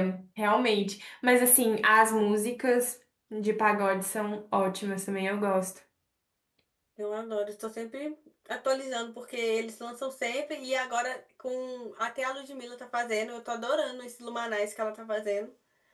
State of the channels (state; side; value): identical; both; correlation 1.00